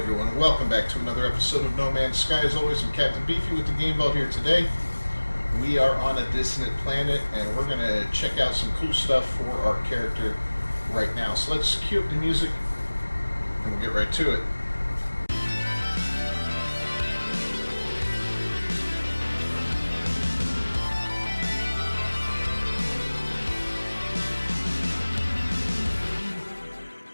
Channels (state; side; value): inverted; both; correlation -1.00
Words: welcome back to another episode of No Man's Sky. As always, I'm Captain Beefy with the Game Vault here today. We are on a dissonant planet and we're going to check out some cool stuff for our character right now. So let's cue up the music and we'll get right to it.